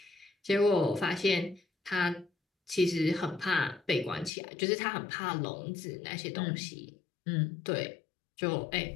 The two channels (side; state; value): right; drops out; at 4.3 s